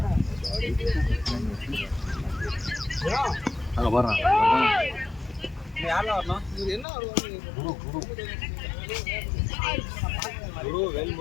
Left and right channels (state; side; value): drops out; right; at 6.9 s